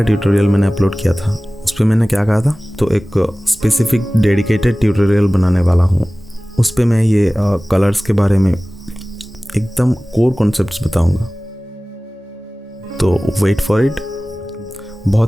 ट्यूटोरियल मैंने अपलोड किया था उस पर मैंने क्या कहा था, तो एक स्पेसिफिक डेडिकेटेड ट्यूटोरियल बनाने वाला हूँ। उस पर मैं ये कलर्स के बारे में एकदम कोर कॉन्सेप्ट्स बताऊँगा, तो वेट फॉर इट।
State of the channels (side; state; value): both; normal; correlation 0.98